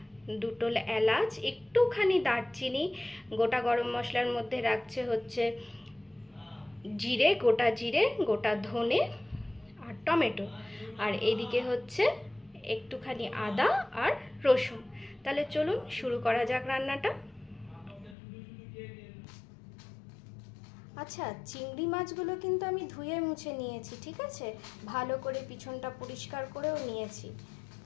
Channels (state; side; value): drops out; right; at 18.2 s